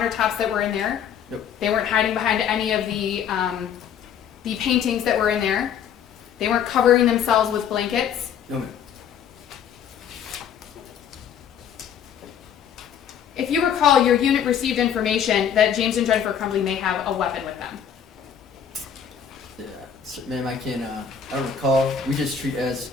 that were in there. Nope. They weren't hiding behind any of the paintings that were in there. They weren't covering themselves with blankets. No, ma'am. If you recall, your unit received information that James and Jennifer Crumbley may have a weapon with them. Yeah, so, ma'am, I can't. I don't recall. We just treat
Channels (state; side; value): quieter; right; 8.1 dB